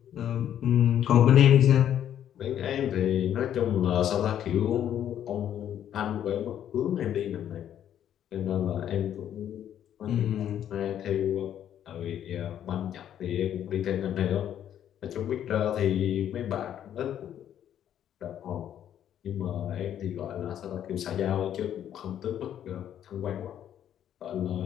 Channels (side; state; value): right; quieter; 10.3 dB